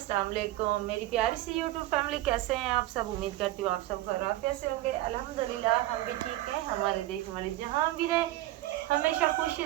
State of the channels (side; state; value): left; quieter; 16.2 dB